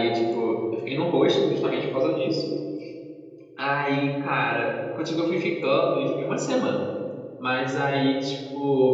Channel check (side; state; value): both; identical; correlation 1.00